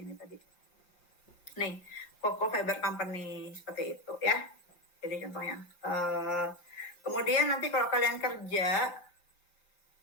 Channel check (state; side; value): late; right; 5.7 ms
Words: ini tadi. Nih, Coco Fiber Company seperti itu ya. Jadi contohnya. Kemudian nanti kalau kalian kerja,